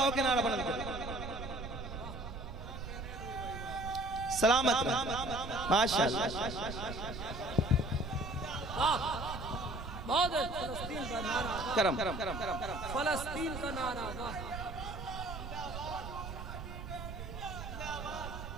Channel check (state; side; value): noise; right; rumble, 8 dB below the sound